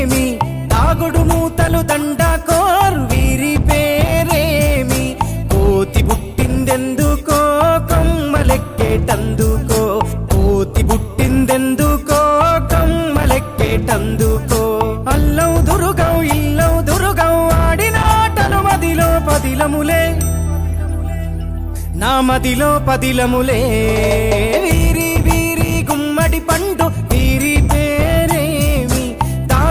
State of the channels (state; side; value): identical; both; correlation 1.00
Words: తాగుడు మూతలు దండకోర్ వీరి పేరేమి, కోతి పుట్టిందెందుకో కొమ్మలెక్కేటందుకో, కోతి పుట్టిందెందుకో కొమ్మలెక్కేటందుకో, అల్లవు దురుగవు ఇల్లవు దురుగవు ఆడినాటలు మదిలో పదిలములే, నా మదిలో పదిలములే, వీరి వీరి గుమ్మడి పండు వీరి పేరేమి,